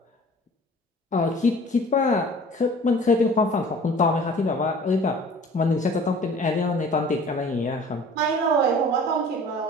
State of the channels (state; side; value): normal; both; correlation 0.47